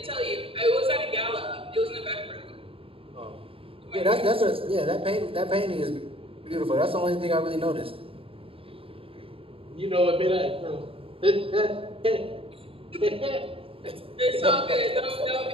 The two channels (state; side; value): late; left; 0.27 ms